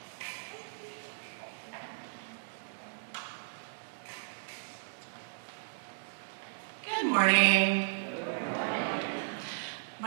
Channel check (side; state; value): left; silent; digital silence